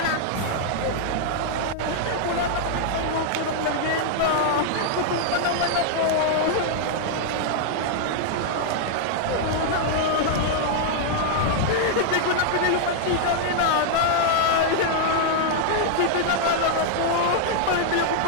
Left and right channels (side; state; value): both; different; correlation -0.01